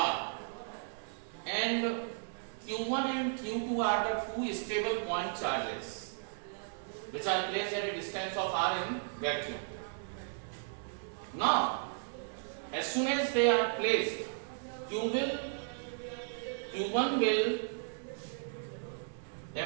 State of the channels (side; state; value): left; silent; digital silence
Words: and Q1 and Q2 are the 2 stable point charges which are placed at a distance of r in vacuum. Now, as soon as they are placed, Q1 will